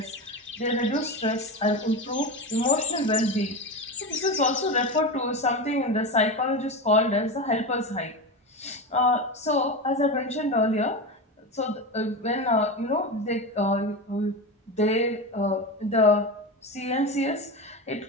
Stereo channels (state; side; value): normal; both; correlation 0.21